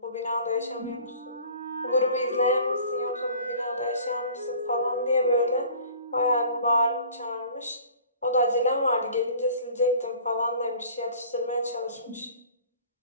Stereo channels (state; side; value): inverted; both; correlation -0.47